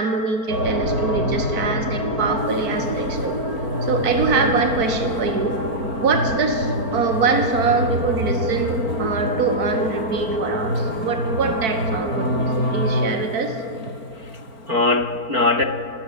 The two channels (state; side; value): late; left; 4.5 ms